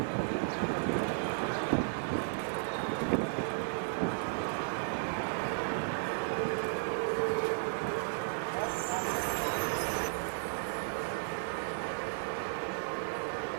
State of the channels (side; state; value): left; silent; digital silence